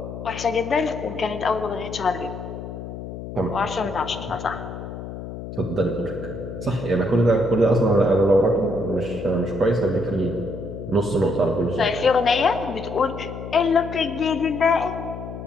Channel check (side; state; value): left; noise; hum, 9 dB below the sound